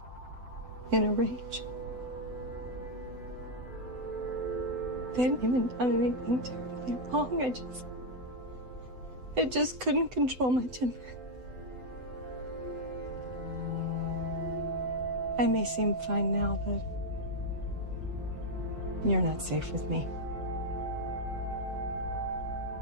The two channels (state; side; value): late; left; 7.9 ms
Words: in a rage. They hadn't even done anything terribly wrong. I just couldn't control my temper. I may seem fine now, but you're not safe with me.